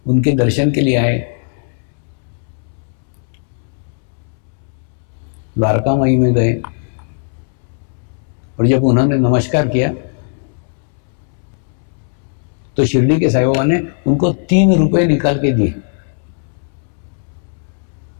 उनके दर्शन के लिए आए। द्वारका माई में गए और जब उन्होंने नमस्कार किया तो शिरडी के साईं बाबा ने उनको 3 रुपए निकाल के दिए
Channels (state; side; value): silent; right; 68 dB below the other